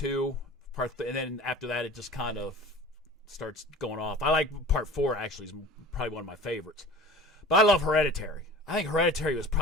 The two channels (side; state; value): both; normal; correlation 0.40